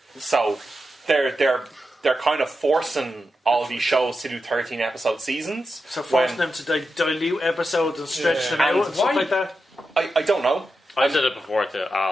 So they're kind of forcing all these shows to do 13 episode seasons. So forcing them to dilute episodes and stretch them out and stuff like that. I don't know. I said it before to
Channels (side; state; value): both; normal; correlation 0.89